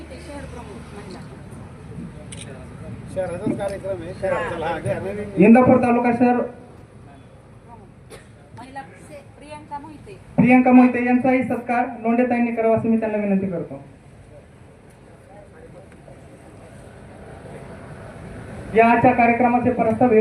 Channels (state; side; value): identical; both; correlation 1.00